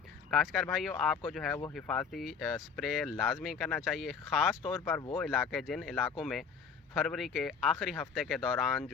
काश्तकार भाइयों, आपको जो है वो हिफाजती स्प्रे लाजमी करना चाहिए, ख़ास तौर पर वो इलाके जिन इलाकों में फरवरी के आखिरी हफ्ते के दौरान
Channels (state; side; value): quieter; right; 6.1 dB